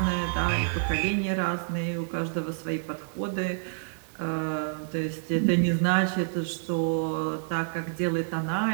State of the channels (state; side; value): silent; left; digital silence